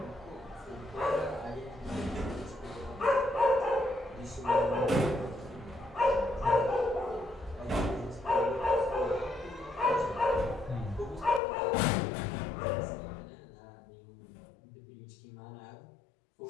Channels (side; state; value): right; drops out; at 11.4 s